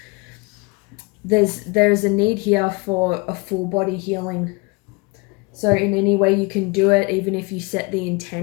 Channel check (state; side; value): quieter; right; 27.7 dB